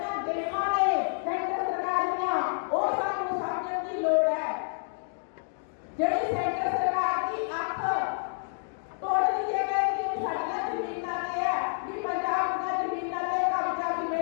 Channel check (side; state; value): right; silent; digital silence